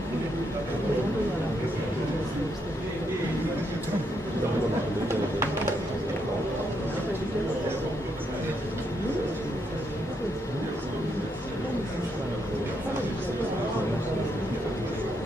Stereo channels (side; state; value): both; normal; correlation 0.77